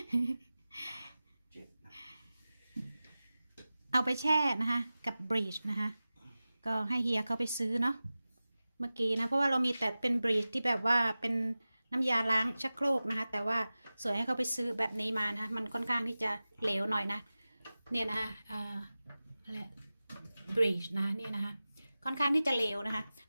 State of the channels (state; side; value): inverted; both; correlation -0.96